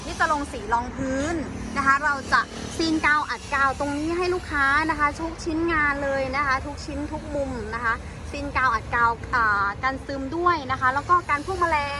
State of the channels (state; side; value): identical; both; correlation 1.00